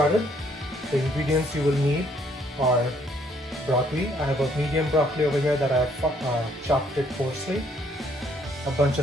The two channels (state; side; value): normal; both; correlation 0.66